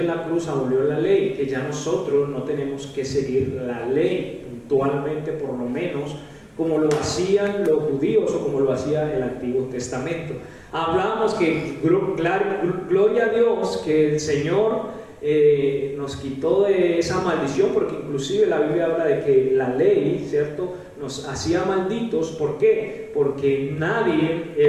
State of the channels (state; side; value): identical; both; correlation 1.00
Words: la cruz abolió la ley, que ya nosotros no tenemos que seguir la ley puntualmente, por lo menos como lo hacían los judíos o como lo hacía el Antiguo Testamento. Hablamos que gloria a Dios que el Señor nos quitó de esa maldición, porque inclusive la Biblia habla de que la ley, ¿cierto?, nos hacía malditos. ¿Por qué? Porque nadie